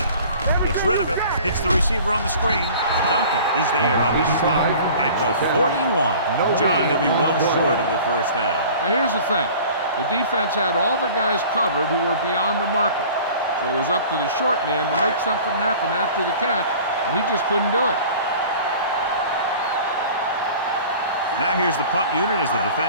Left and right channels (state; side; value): inverted; both; correlation -0.44